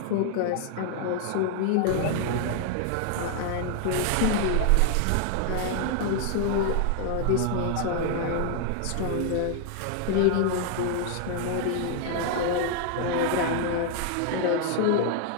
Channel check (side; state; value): both; different; correlation 0.00